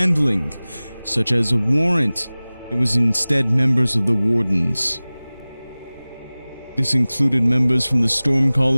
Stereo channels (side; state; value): both; inverted; correlation -0.99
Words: such as a warrant, it was instead members of the Wardens. This included members from the